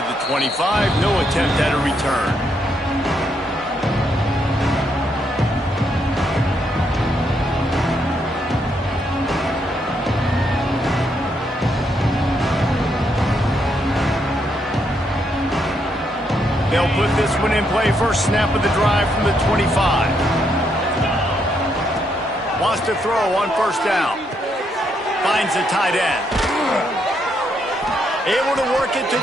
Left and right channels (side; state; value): both; normal; correlation 0.76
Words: the 25. No attempt at a return. They'll put this one in play. First snap of the drive from the 25. Wants to throw on first down. Finds the tight end. Able to work it to